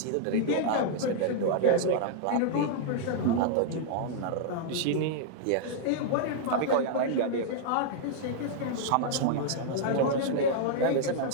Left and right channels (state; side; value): different; both; correlation -0.01